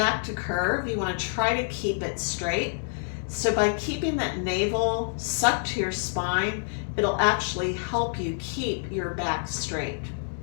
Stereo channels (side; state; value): right; silent; digital silence